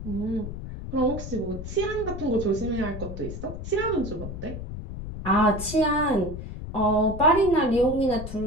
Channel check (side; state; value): left; noise; rumble, 8 dB below the sound